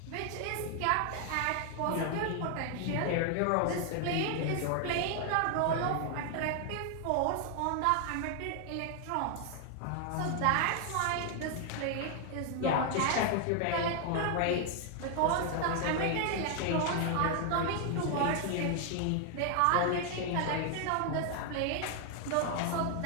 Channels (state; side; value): different; both; correlation 0.00